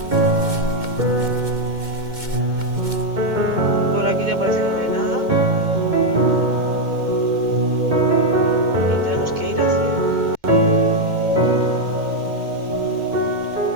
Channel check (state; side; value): late; left; 2.2 ms